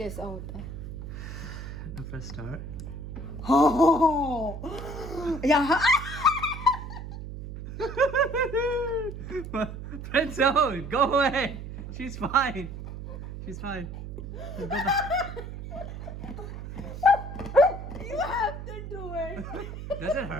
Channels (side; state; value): right; noise; hum, 9 dB below the sound